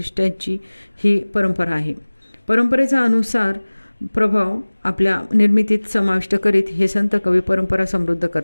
ही परंपरा आहे. परंपरेचा अनुसार प्रभाव आपल्या निर्मितीत समाविष्ट करीत हे संत कवी परंपरा समृद्ध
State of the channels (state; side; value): inverted; both; correlation -1.00